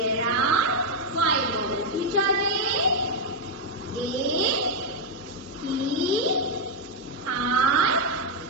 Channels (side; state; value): both; normal; correlation 0.00